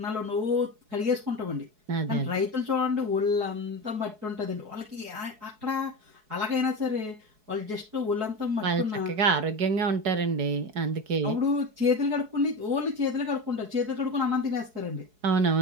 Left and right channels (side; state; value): left; late; 4.7 ms